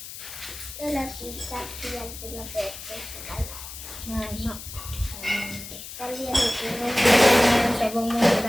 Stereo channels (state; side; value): noise; left; hiss, 12 dB below the sound